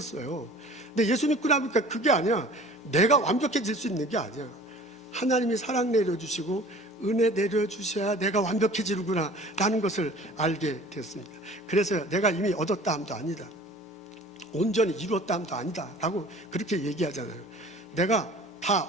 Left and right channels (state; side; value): normal; both; correlation 0.46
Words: 근데 예수 믿고 나니까 그게 아니야. 내가 완벽해질 수 있는 게 아니야. 하나님이 사랑 내려주시고 은혜 내려주셔야 내가 완벽해지는구나 라는 것을 알게 됐습니다. 그래서 내가 이미 얻었다 함도 아니다, 온전히 이루었다 함도 아니다 라고 그렇게 얘기하잖아요. 내가 다